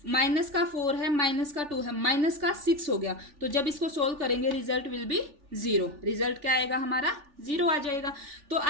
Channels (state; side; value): late; left; 3.4 ms